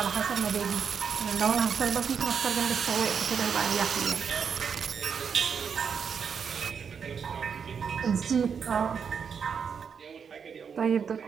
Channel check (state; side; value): quieter; left; 6.6 dB